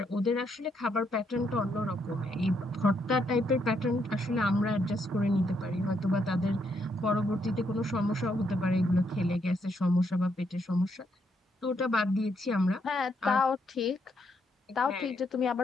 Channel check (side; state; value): both; normal; correlation 0.75